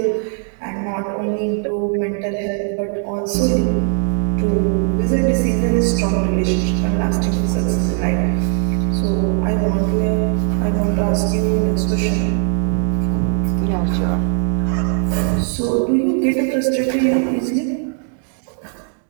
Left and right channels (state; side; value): silent; left; 57 dB below the other